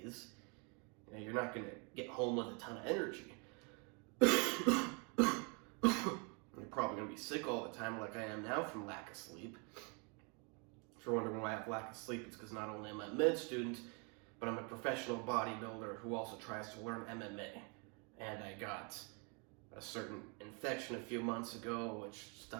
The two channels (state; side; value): quieter; left; 34.1 dB